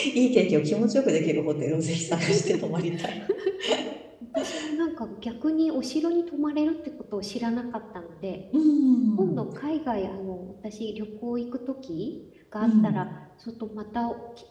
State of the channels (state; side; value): identical; both; correlation 1.00